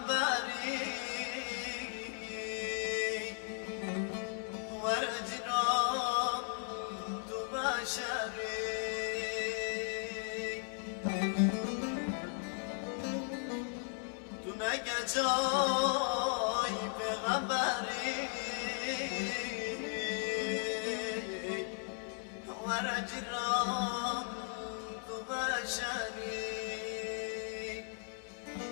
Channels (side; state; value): right; silent; 53 dB below the other